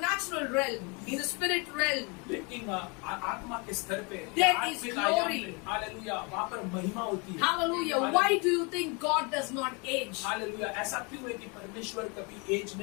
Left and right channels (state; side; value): quieter; right; 31.4 dB